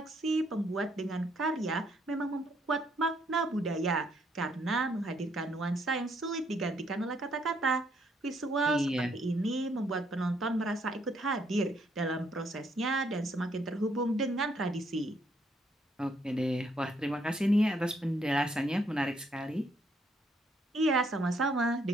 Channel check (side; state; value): both; normal; correlation 0.71